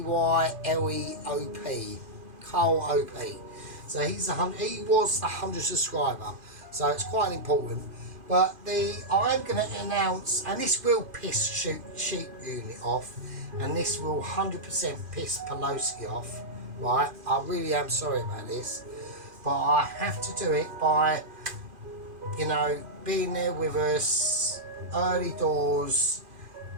Carl O-P. So he was the 100 subscriber, so it's quite important. But I'm going to announce, and this will piss Sheep Unit off, and this will 100% piss Pelosi off, right? I really am sorry about this, but I have to do it by, you know, being there with us, early doors.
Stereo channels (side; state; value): left; late; 2.5 ms